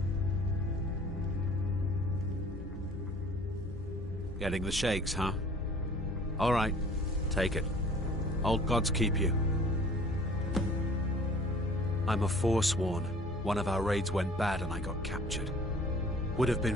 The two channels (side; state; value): both; normal; correlation 0.50